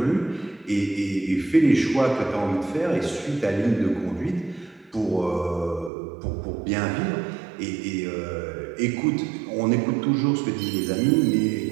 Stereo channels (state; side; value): drops out; left; at 5.9 s